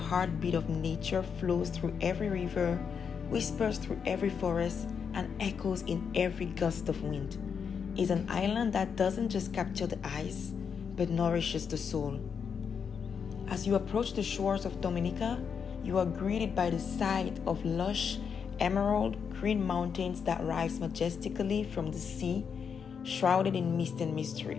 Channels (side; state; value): right; quieter; 6.6 dB